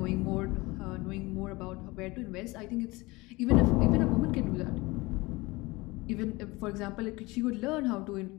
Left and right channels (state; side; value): quieter; right; 22.6 dB